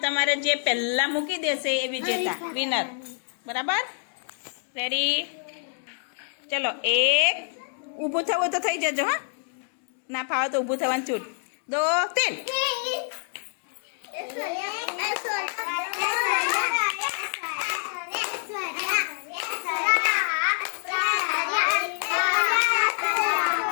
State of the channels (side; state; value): right; silent; digital silence